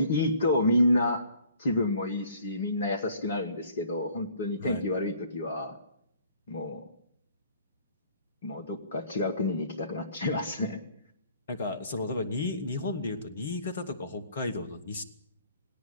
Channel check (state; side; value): inverted; both; correlation -0.56